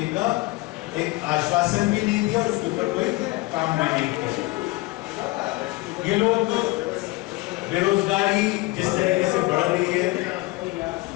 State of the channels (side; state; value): right; quieter; 21.5 dB